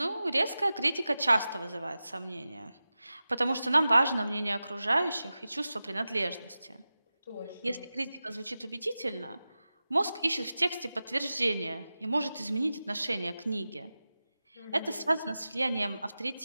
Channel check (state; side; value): inverted; both; correlation -0.94